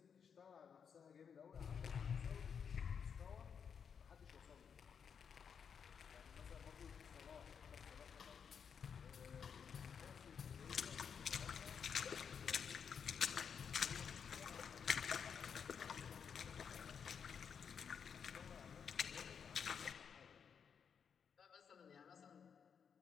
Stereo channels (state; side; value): quieter; right; 7.0 dB